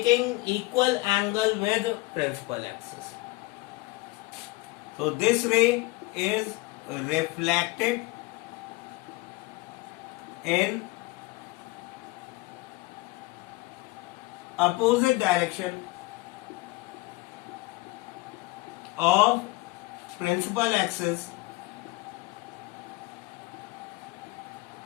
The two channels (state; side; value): quieter; right; 22.4 dB